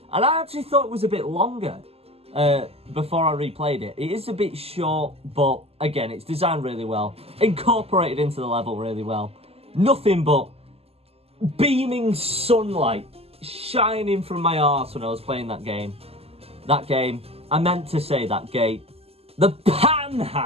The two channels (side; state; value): left; late; 0.29 ms